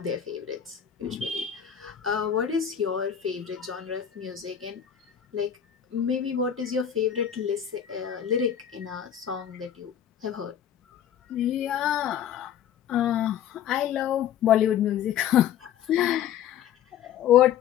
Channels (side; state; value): right; quieter; 9.4 dB